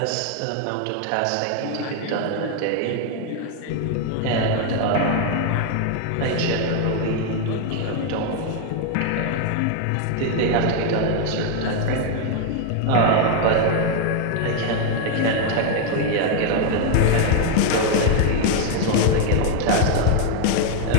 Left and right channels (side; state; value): both; different; correlation 0.00